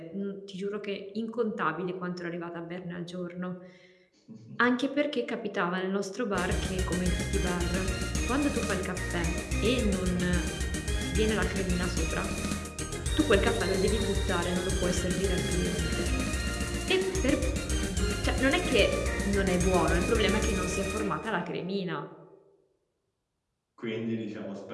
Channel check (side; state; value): both; identical; correlation 1.00